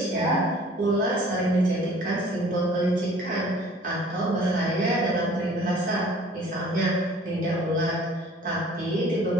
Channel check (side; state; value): both; normal; correlation 0.51